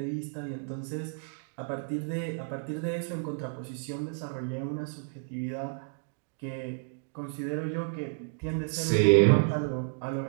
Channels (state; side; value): silent; left; 57 dB below the other